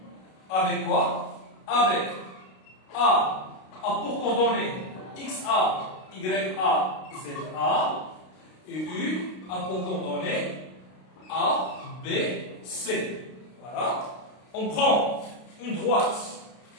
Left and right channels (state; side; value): late; right; 32 ms